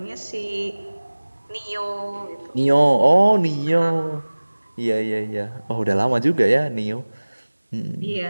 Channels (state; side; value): inverted; both; correlation -1.00